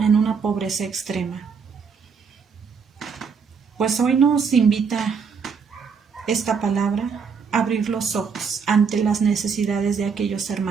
pobreza extrema. Pues hoy nos invita esta palabra a abrir los ojos ante las necesidades de aquellos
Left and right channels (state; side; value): quieter; left; 5.9 dB